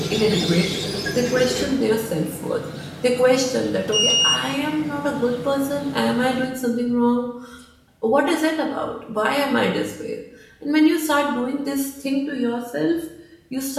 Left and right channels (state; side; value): identical; both; correlation 1.00